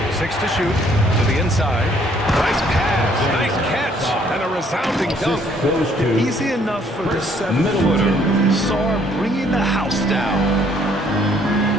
6 to shoot. To the inside. Nice pass. Nice catch. And a resounding dunk. Easy enough for the 7-footer. Sarr bringing the house down.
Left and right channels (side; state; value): both; normal; correlation 0.64